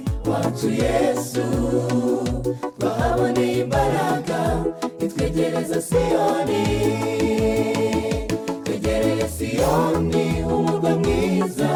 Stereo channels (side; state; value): both; identical; correlation 1.00